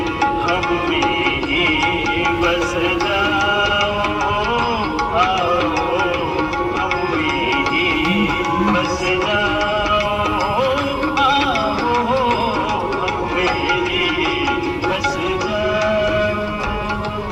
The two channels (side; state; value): both; identical; correlation 1.00